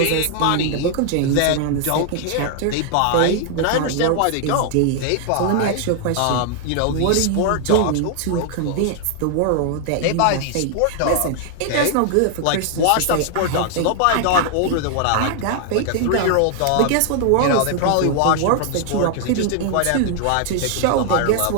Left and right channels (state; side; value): different; both; correlation 0.00